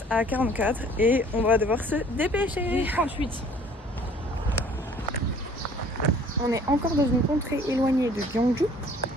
à 44 et on va devoir se dépêcher. 38. On est encore dans une contrée éloignée de Gyeongju.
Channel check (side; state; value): both; normal; correlation 0.53